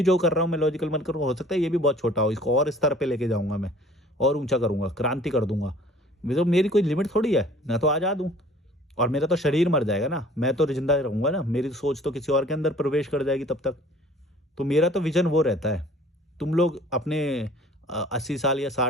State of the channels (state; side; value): normal; both; correlation 0.51